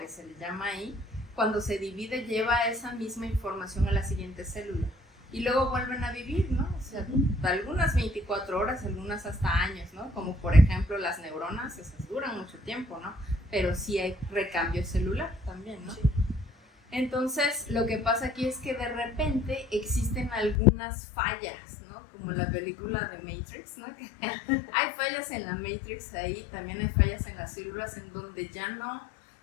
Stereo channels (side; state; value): right; drops out; at 20.6 s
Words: se le llama ahí. Cuando se divide, lleva esa misma información a la siguiente célula. Y luego vuelven a vivir, ¿no? O sea, algunas 24 horas, algunas hasta años, ¿no? Como por ejemplo las neuronas, esas duran mucho tiempo, ¿no? Pero sí hay recambio celular también, ¿no? Sí. Entonces, lo que pasa aquí es que de repente existen algunas fallas, ¿no? Como en la película de Matrix, ¿no? Hay fallas en la Matrix ahí, también hay fallas en las células en donde ya